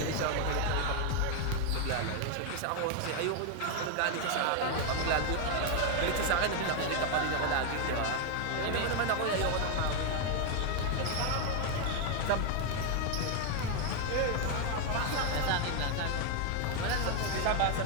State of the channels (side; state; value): both; different; correlation 0.01